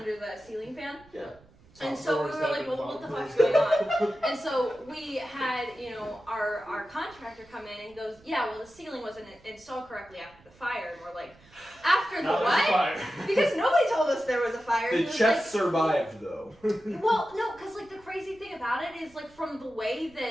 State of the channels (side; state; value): right; noise; rumble, 27 dB below the sound